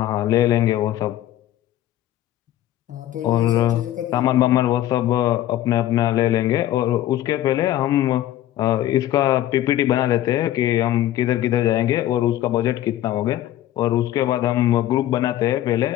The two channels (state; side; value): quieter; right; 13.3 dB